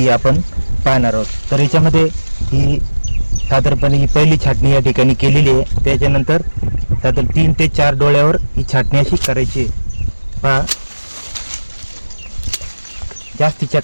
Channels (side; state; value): both; inverted; correlation -1.00